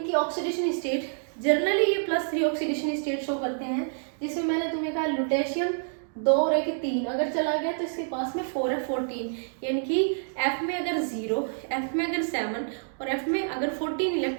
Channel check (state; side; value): silent; left; digital silence